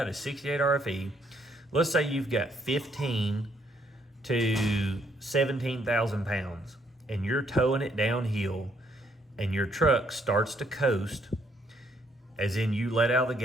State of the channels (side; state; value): both; normal; correlation 0.70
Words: a 68 RFE, let's say you've got 15 to 17,000 pounds and you're towing it downhill and your truck starts to coast, as in you let out the